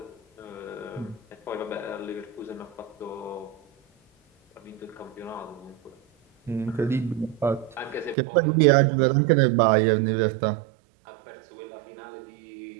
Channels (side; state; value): left; drops out; at 8.2 s